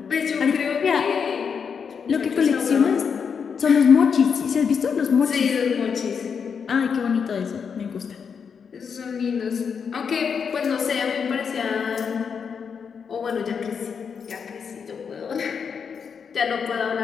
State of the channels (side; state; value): right; quieter; 6.4 dB